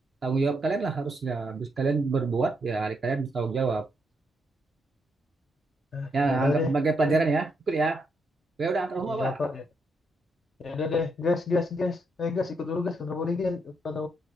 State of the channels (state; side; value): normal; both; correlation 0.78